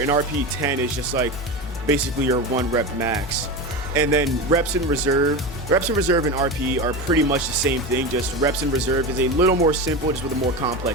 And RPE 10 is just like basically your 1 rep max. And then reps in reserve and RPE are pretty much the same thing, just reps in reserve is a little more simple, just with a more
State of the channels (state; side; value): normal; both; correlation 0.23